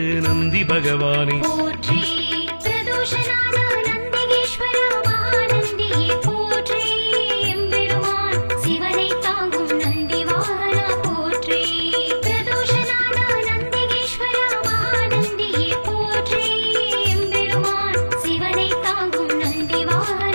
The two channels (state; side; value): inverted; both; correlation -1.00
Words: நந்தி பகவானே போற்றி பிரதோஷநாத நந்திகேஸ்வரா மகாநந்தியே போற்றி எம்பெருமான் சிவனை தாங்கும் நந்தி வாகனா போற்றி பிரதோஷநாத நந்திகேஸ்வரா மகாநந்தியே போற்றி எம்பெருமான் சிவனை தாங்கும் நந்தி